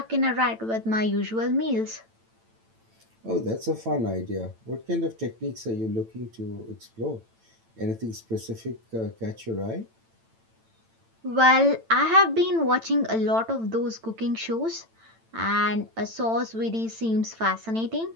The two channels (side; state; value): left; late; 9.0 ms